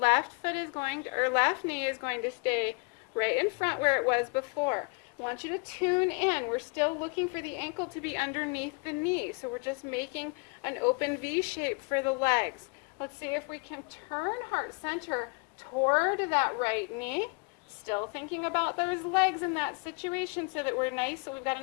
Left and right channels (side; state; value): right; quieter; 32.9 dB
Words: knee is going to stay right in front where it was before. I want you to tune in. We're still looking for the ankle to be underneath the knee, so we're just making an open V shape for the legs. Let's see if we can turn heart center toward that right knee. Still thinking about those legs in that situation so that we're nice, so we've got